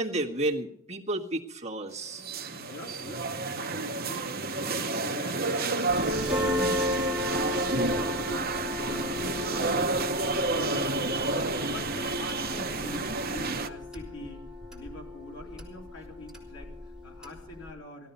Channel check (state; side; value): normal; both; correlation 0.13